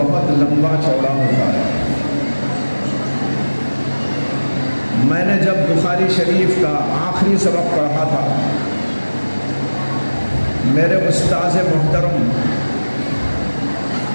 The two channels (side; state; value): both; inverted; correlation -1.00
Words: لمبا چوڑا ہوتا ہے. میں نے جب بخاری شریف کا آخری سبق پڑھا تھا میرے استاذ محترم